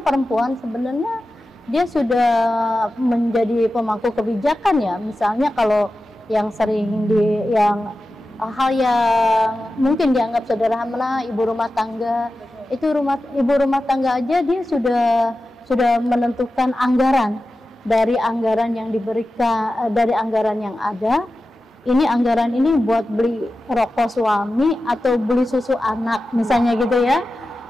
perempuan sebenarnya dia sudah menjadi pemangku kebijakan ya. Misalnya kalau yang sering hal yang mungkin dianggap sederhana, ibu rumah tangga, itu ibu rumah tangga aja dia sudah menentukan anggaran, dari anggaran yang diberikan, dari anggaran yang ada. Ini anggaran ini buat beli rokok suami atau beli susu anak, misalnya gitu ya.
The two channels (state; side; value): normal; both; correlation 0.93